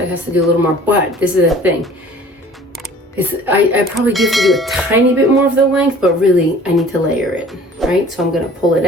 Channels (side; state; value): both; normal; correlation 0.48